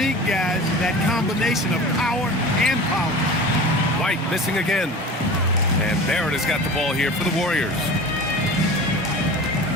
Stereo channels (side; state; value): both; normal; correlation 0.36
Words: guys, that combination of power and power. White missing again. And Barrett has got the ball here for the Warriors.